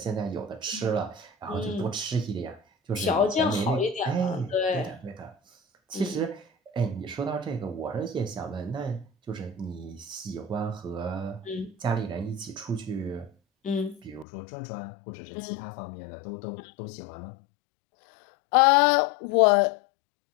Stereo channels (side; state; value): right; drops out; at 14.2 s